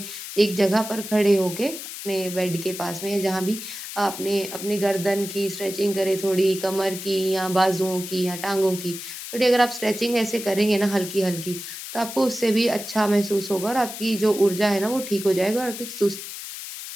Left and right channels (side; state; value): left; noise; hiss, 9 dB below the sound